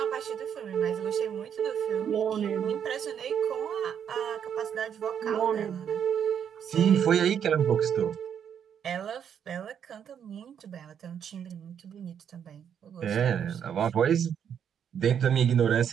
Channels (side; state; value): left; quieter; 8.4 dB